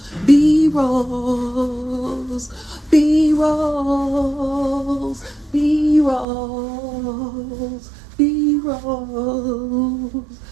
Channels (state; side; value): drops out; left; at 6.2 s